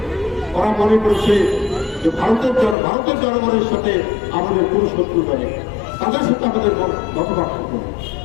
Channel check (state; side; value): drops out; right; at 2.8 s